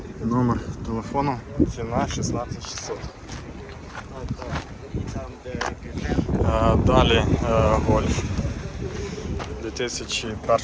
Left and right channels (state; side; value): identical; both; correlation 1.00